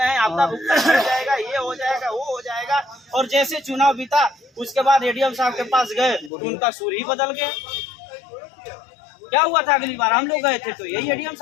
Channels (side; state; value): right; drops out; at 6.3 s